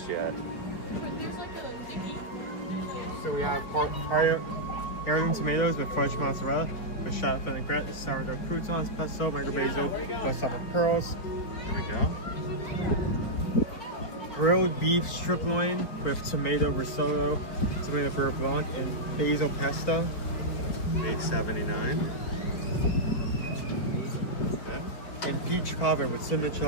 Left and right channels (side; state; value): right; late; 4.8 ms